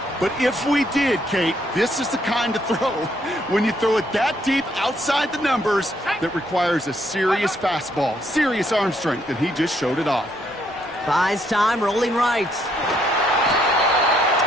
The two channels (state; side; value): normal; both; correlation 0.71